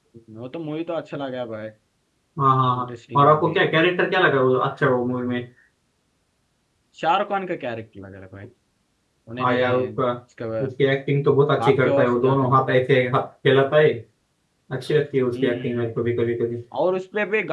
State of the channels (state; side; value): identical; both; correlation 1.00